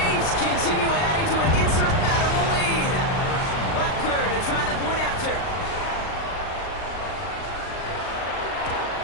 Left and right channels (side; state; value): right; late; 39 ms